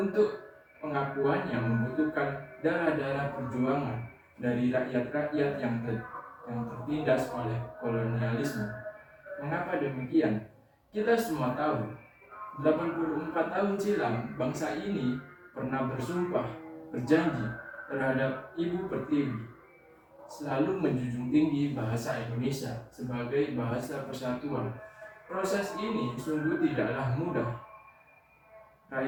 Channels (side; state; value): both; identical; correlation 1.00